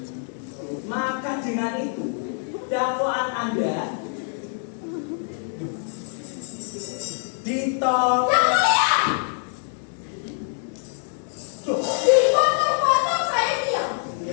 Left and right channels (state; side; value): silent; right; 62 dB below the other